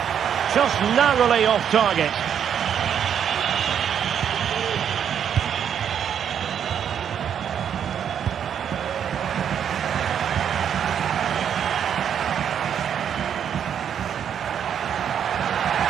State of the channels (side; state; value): left; quieter; 8.5 dB